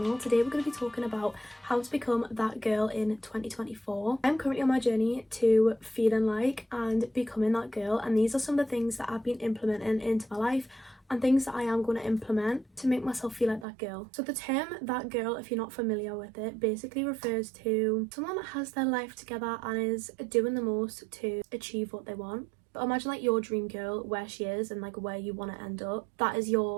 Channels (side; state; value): left; drops out; at 13.7 s